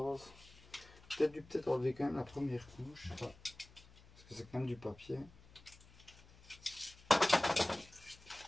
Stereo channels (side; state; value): left; noise; hum, 23 dB below the sound